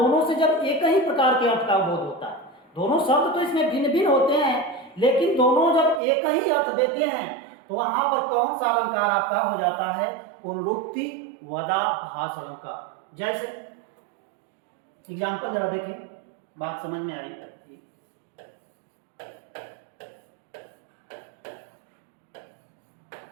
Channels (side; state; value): left; drops out; at 6.0 s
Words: से जब एक ही प्रकार के अर्थ का बोध होता है, दोनों शब्द तो इसमें भिन्न भिन्न होते हैं, लेकिन दोनों जब एक ही अर्थ देते हैं, तो वहां पर कौन सा अलंकार आपका हो जाता है, पुनरुक्ति वदाभास अलंकार। जैसे एग्जाम्पल जरा देखें, बात समझ में आई।